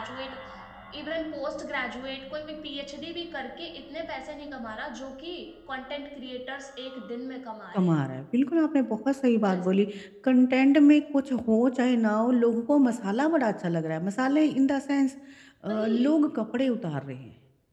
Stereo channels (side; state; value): both; identical; correlation 1.00